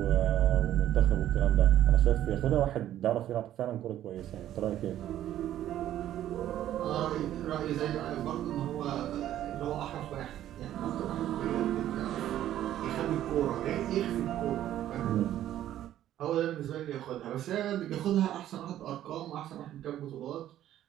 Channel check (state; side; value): quieter; left; 12.3 dB